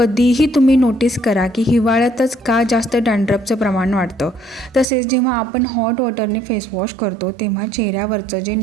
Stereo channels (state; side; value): drops out; left; at 4.9 s